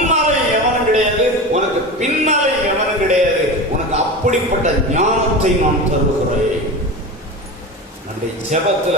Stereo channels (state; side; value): normal; both; correlation 0.27